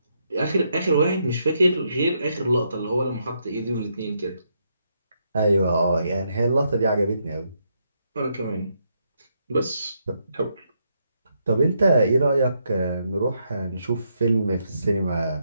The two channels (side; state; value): both; inverted; correlation -0.78